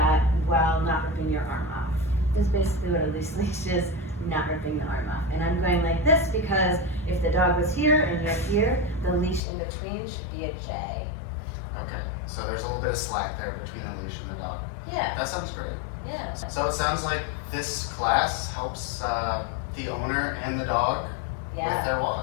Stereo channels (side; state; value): right; drops out; at 9.4 s